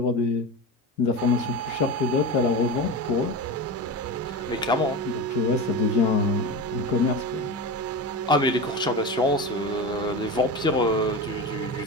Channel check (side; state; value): both; normal; correlation 0.25